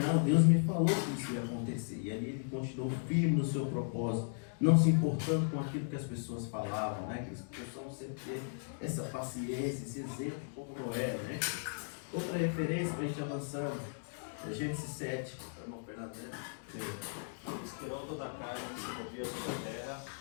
Deus me falou que isso ia acontecer. E ali ele continuou firme no seu propósito, não se importando com aquilo que as pessoas falavam, né? Que as pessoas sempre ter essa paciência, esse exemplo como Noé, né? Outra referência para a gente avançar, Gênesis 7, irmão Fernando, né? Inspirou toda a carne que se movia sobre a terra,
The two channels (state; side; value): silent; right; digital silence